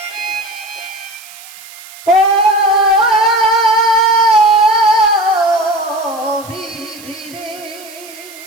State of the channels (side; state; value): right; noise; hiss, 19 dB below the sound